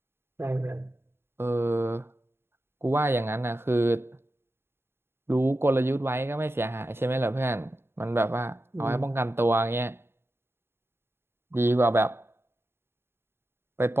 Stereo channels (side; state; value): left; late; 0.11 ms